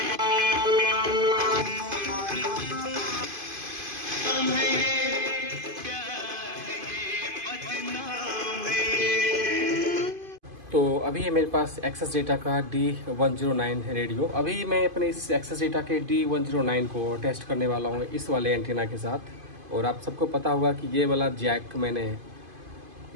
अभी है मेरे पास एक्सेस डेटा का D109 रेडियो। अभी मैं अपने इस एक्सेस डेटा के D109 को टेस्ट करने वाला हूँ इस वाले एंटीना के साथ। और आप सबको पता होगा कि ये वाला जैक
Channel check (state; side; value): late; left; 2.5 ms